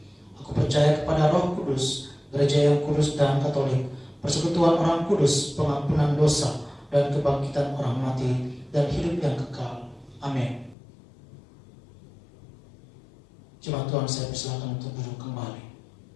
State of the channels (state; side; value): drops out; right; at 10.8 s